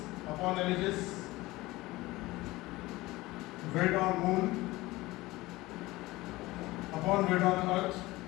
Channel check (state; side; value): quieter; right; 19.5 dB